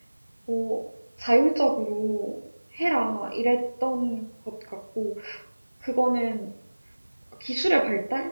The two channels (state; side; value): inverted; both; correlation -1.00